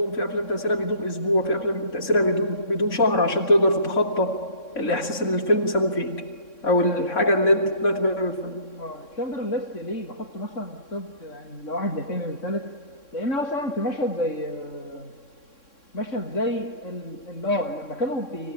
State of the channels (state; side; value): late; right; 3.6 ms